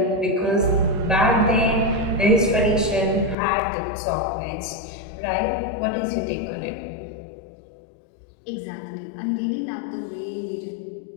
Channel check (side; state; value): right; drops out; at 3.4 s